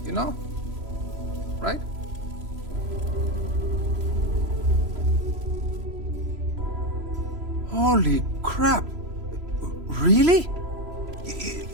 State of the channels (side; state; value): left; late; 3.0 ms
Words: You know? Right? Holy crap. Really?